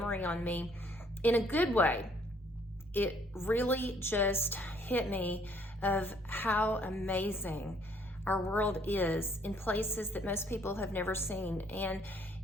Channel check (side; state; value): both; normal; correlation 0.63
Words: on me in a good way. It really just hit me of how amazing our world is in places that most people have never seen. And